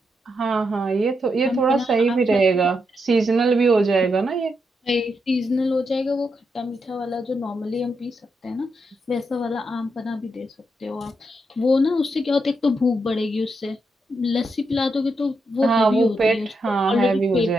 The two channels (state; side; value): normal; both; correlation 0.82